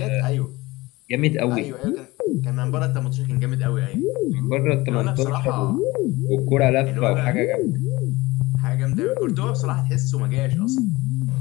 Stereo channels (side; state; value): right; quieter; 20.9 dB